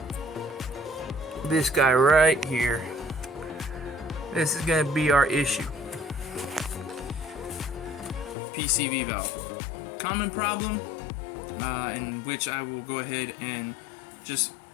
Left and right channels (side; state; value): right; drops out; at 8.3 s